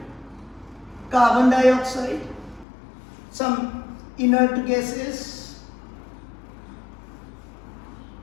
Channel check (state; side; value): drops out; right; at 2.7 s